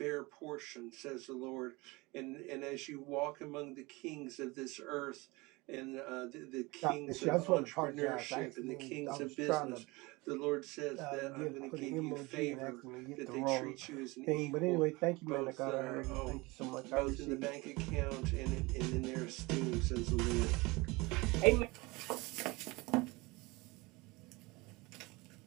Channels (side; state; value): left; quieter; 23.8 dB